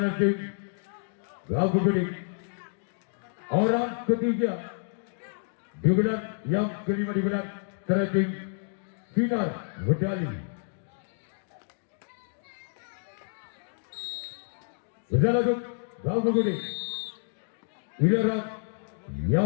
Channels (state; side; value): silent; right; digital silence